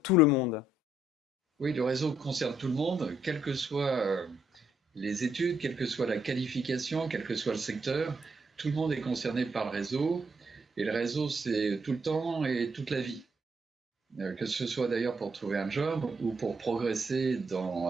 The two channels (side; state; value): both; normal; correlation 0.74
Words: tout le monde? Oui, le réseau concerne tout le monde, quelles que soient les études, quelle que soit la qualification, quel que soit le secteur. Tout le monde est concerné par le réseau. Et le réseau, c'est tout le temps et toute la vie. Que ce soit d'ailleurs pour trouver un job ou pour progresser